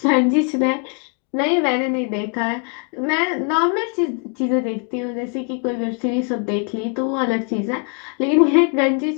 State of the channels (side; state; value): right; quieter; 38.7 dB